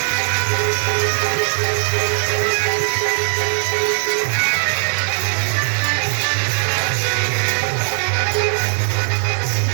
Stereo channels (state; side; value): silent; left; digital silence